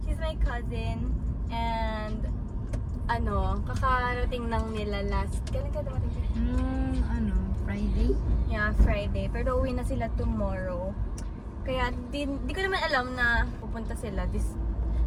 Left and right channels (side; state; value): both; identical; correlation 1.00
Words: She's my cousin. And, kakarating lang nila last, kailan ka dumating siya? Friday? Yeah, Friday. Pero uwi na sila tomorrow. Kaya di ko naman alam na pupunta sila.